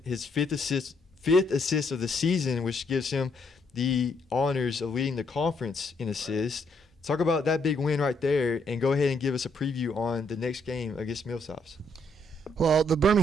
his fifth assist of the season, which gives him the honors of leading the conference in assists. Talk about that big win right there, and go ahead and give us a preview on the next game against Millsaps. Well, the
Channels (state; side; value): normal; both; correlation 0.72